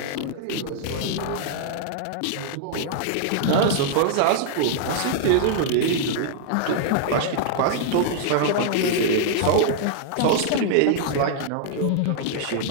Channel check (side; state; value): both; different; correlation -0.01